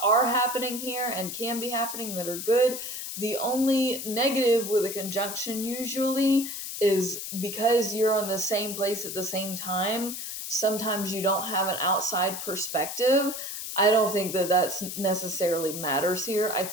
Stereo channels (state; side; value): noise; left; hiss, 6 dB below the sound